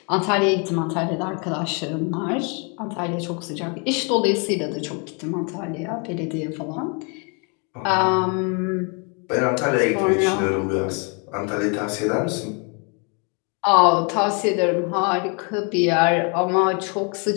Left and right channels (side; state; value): right; quieter; 35.3 dB